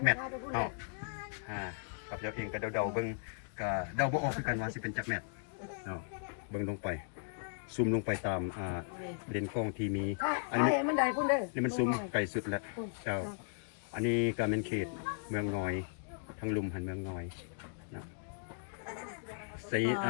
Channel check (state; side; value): silent; right; digital silence